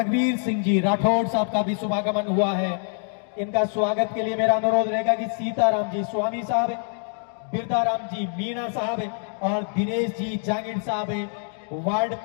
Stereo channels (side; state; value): right; silent; 62 dB below the other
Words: सिंह जी राठौड़ साहब का भी शुभागमन हुआ है। इनका स्वागत के लिए मेरा अनुरोध रहेगा कि सीताराम जी स्वामी साहब, बिरदाराम जी मीणा साहब और दिनेश जी जांगिड़ साहब वार्ड